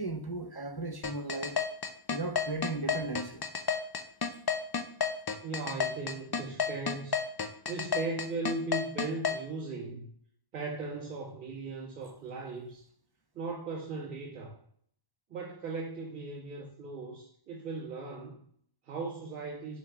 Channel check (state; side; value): late; right; 1.1 ms